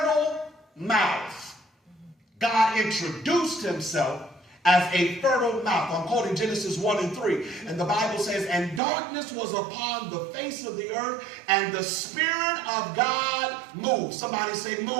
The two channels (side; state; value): left; drops out; at 8.8 s